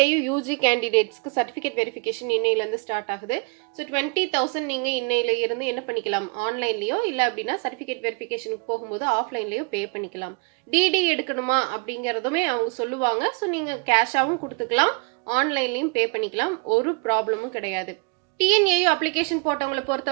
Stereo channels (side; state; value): left; quieter; 33.2 dB